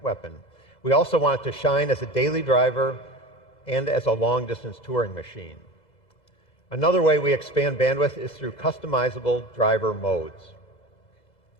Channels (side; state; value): right; late; 2.0 ms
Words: We also want it to shine as a daily driver and as a long-distance touring machine. Another way we expand bandwidth is through customizable driver modes.